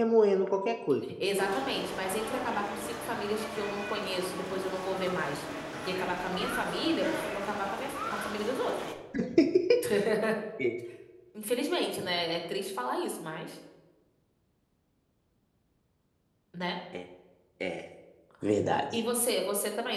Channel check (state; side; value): identical; both; correlation 1.00